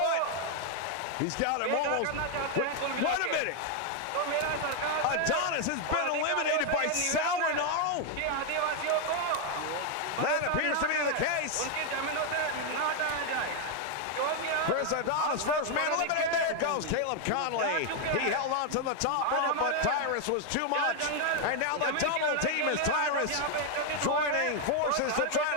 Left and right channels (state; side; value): different; both; correlation 0.00